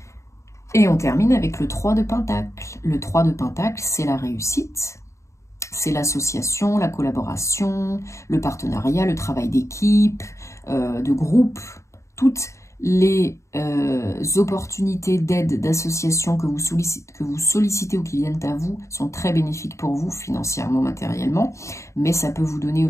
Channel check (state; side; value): late; right; 0.14 ms